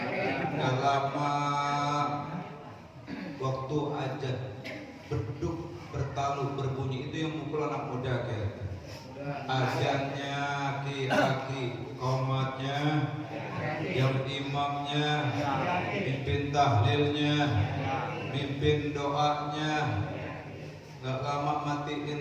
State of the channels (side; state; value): both; identical; correlation 1.00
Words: Gak lama waktu azan beduk bertalu berbunyi, itu yang mukul anak muda kayak azannya aki-aki, qomatnya, yang imamnya, mimpin tahlilnya, mimpin doanya. Gak lama